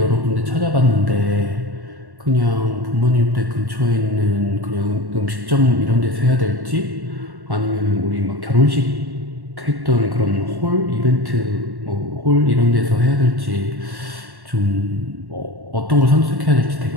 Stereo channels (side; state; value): left; late; 1.1 ms